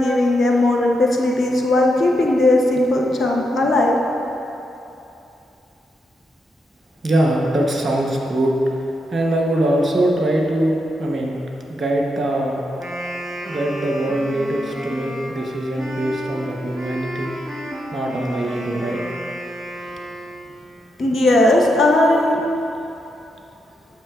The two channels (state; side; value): normal; both; correlation 0.83